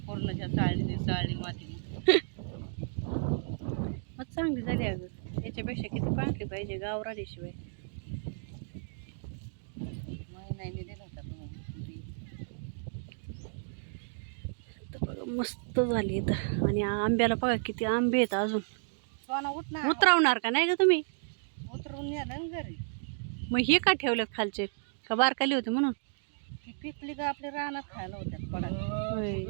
पूर्णच्या चाळणी चाळणी मातीने. मग चांगली झाली अगं. याच्यापेक्षा किती पांढरी पाहिजे गावरानीशिवाय. महिन्याने दिला होता मग. तर बघा मस्त झाली इथं. आणि आंब्याला बघा किती आंबे आहेत अजून. सोना उठ ना. उतरवणार का नाही का तुम्ही? उतरून नेलं ना घरी. मग हे का ठेवलेत खालचे? का बारकाली होती म्हणून? ती पिकली का आपल्या रानात खायला होत्यात पडा. होय.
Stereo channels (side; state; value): left; silent; digital silence